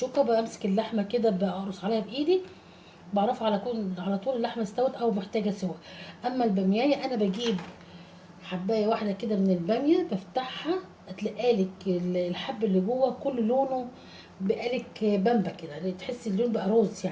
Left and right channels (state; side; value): identical; both; correlation 1.00